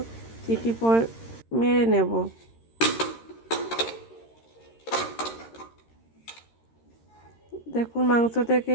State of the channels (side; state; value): right; late; 13 ms